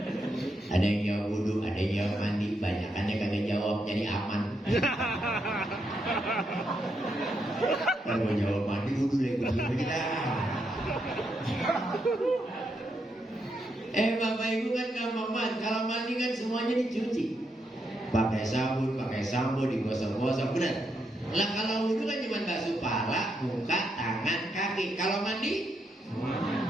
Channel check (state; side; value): normal; both; correlation 0.80